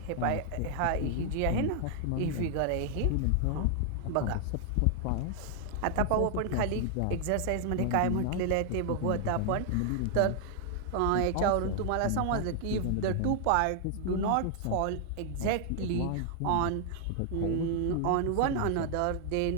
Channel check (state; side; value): different; both; correlation 0.00